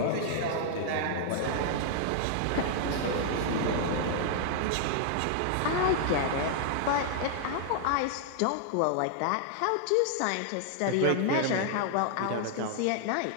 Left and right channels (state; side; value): different; both; correlation -0.01